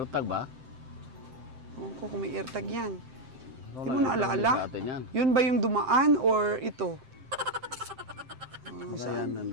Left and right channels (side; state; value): left; late; 7.7 ms